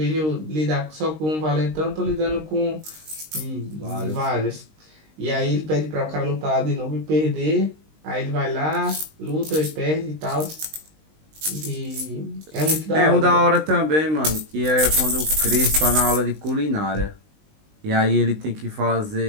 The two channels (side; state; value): left; late; 19 ms